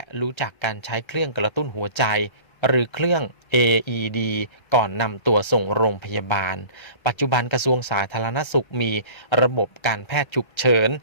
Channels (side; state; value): right; late; 1.3 ms